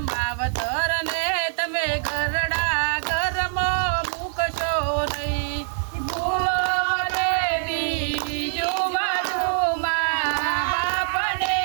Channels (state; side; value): silent; left; digital silence